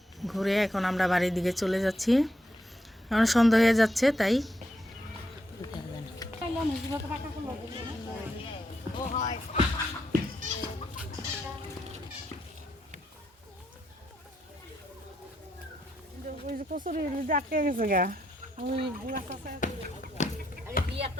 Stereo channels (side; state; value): both; normal; correlation 0.79